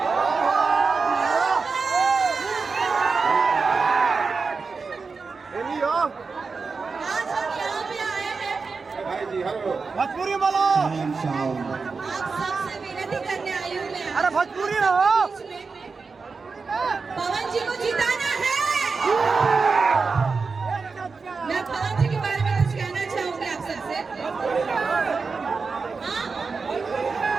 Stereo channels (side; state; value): left; quieter; 4.6 dB